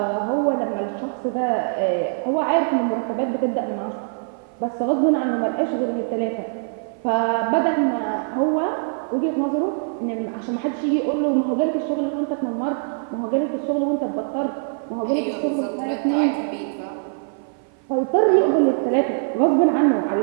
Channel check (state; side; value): silent; left; 56 dB below the other